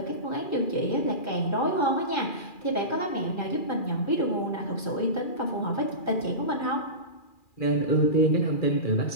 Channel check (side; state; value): right; late; 2.4 ms